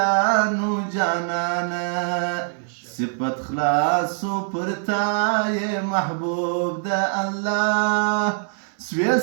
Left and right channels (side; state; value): left; silent; 63 dB below the other